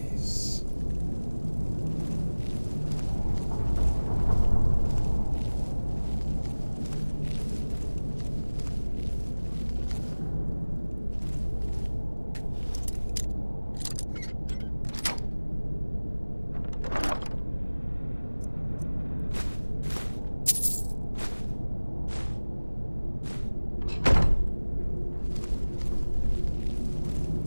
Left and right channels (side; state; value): both; inverted; correlation -1.00